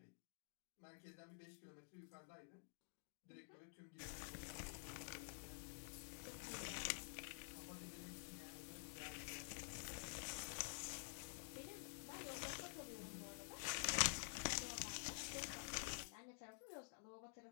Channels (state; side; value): silent; right; digital silence